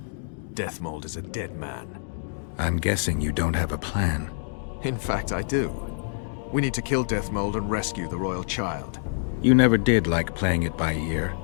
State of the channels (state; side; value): silent; right; digital silence